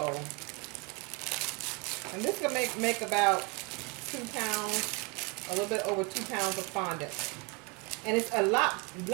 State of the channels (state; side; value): quieter; left; 30.4 dB